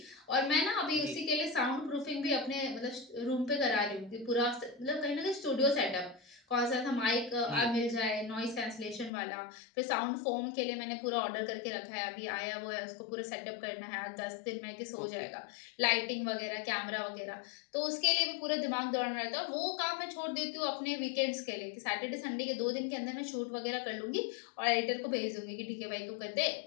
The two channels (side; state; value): right; drops out; at 9.1 s